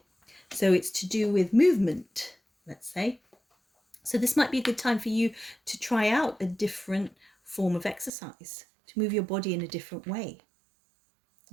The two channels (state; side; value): drops out; left; at 8.1 s